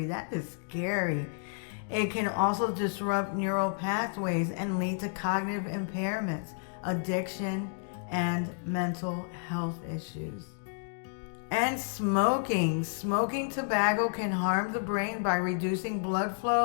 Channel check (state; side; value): silent; right; digital silence